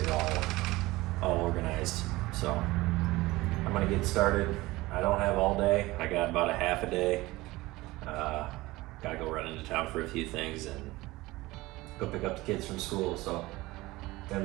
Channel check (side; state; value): left; quieter; 19.7 dB